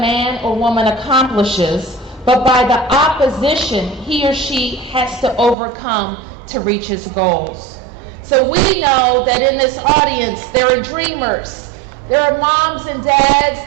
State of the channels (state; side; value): drops out; left; at 5.6 s